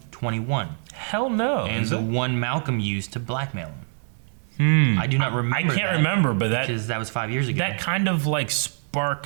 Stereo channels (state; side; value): silent; left; digital silence